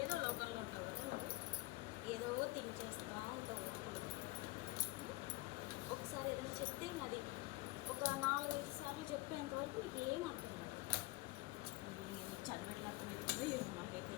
లోకల్లో ఉంటావు కదా, ఏదో థింక్ చేస్తూ ఉంటావు. ఒకసారి ఏదైనా చెప్తే ఇంకా అది ఒక 4-5 సార్లు చెప్పేంత వరకు నీకు ఏం అర్థం కాదు. అది చదివేట్లా అర్థమవుతుందో ఏమో నాకైతే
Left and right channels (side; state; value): right; quieter; 21.9 dB